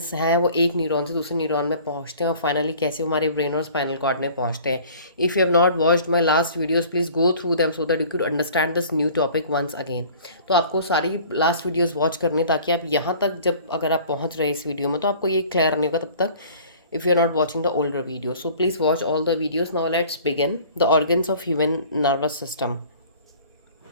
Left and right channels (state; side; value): inverted; both; correlation -0.48